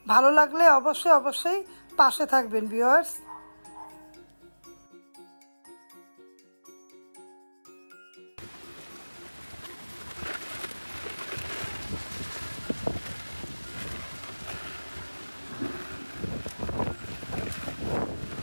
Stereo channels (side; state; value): both; inverted; correlation -1.00